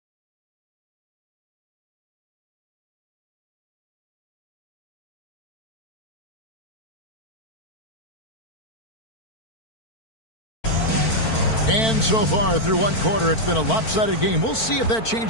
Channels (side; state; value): right; late; 4.5 ms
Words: And so far through one quarter, it's been a lopsided game. We'll see if that